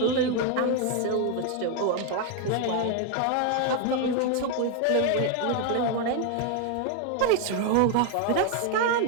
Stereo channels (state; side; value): different; both; correlation 0.01